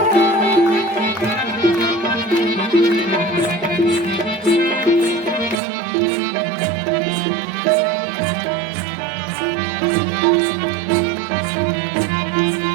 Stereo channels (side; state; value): left; drops out; at 5.6 s